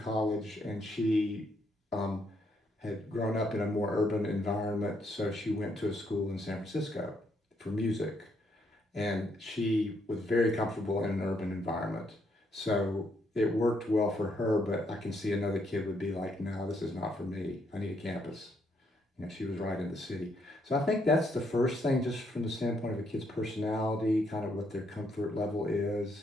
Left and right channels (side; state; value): both; normal; correlation 0.74